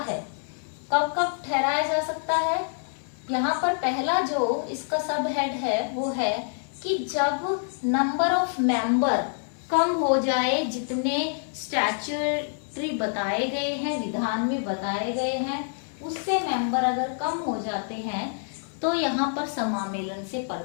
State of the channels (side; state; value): right; silent; 60 dB below the other